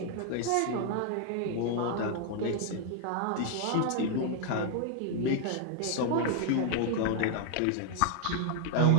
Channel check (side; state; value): both; different; correlation 0.00